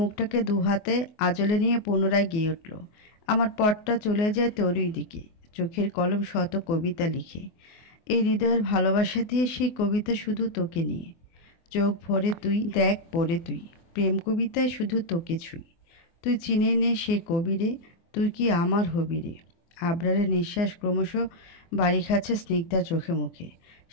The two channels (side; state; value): right; late; 24 ms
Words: দু হাতে আঁচলে নিয়ে পুনরায় গেয়ে উঠল, আমার পথটা চলে যায় তোরই দিকে, চোখের কলম শত কবিতা লিখে। এই হৃদয়ের ভালোবাসা দিয়ে সেই কবিতা শুধু তোকে নিয়ে। চোখ ভরে তুই দেখ পড়ে তুই, প্রেম কবিতায় শুধু তোকে ছুঁই। তুই চিনে নে সে কবি রে, তুই কি আমার হবি রে। আবরারের নিঃশ্বাস ক্রমশ বাড়ি খাচ্ছে স্নিগ্ধার চোখে মুখে।